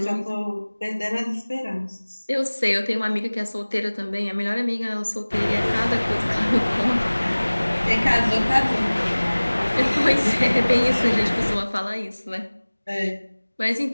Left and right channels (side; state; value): both; inverted; correlation -1.00